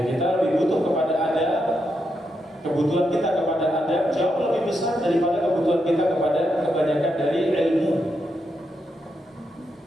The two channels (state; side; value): normal; both; correlation 0.83